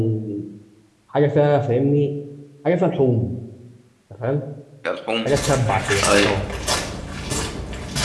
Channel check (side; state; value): both; identical; correlation 1.00